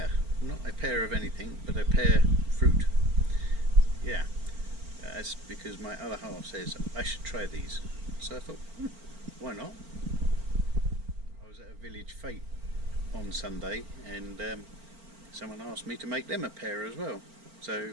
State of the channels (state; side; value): late; left; 4.4 ms